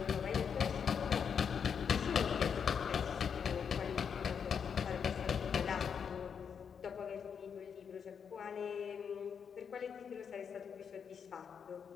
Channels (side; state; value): right; quieter; 7.0 dB